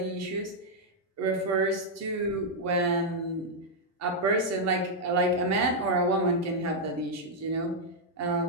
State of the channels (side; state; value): both; normal; correlation -0.04